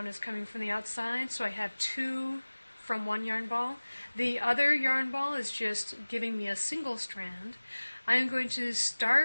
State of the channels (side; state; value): both; inverted; correlation -1.00